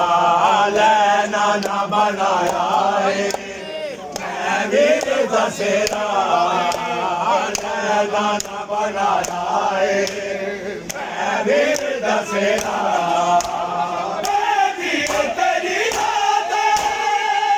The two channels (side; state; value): both; identical; correlation 1.00